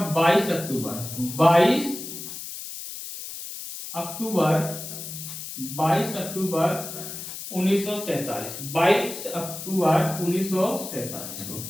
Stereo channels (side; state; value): left; noise; hiss, 9 dB below the sound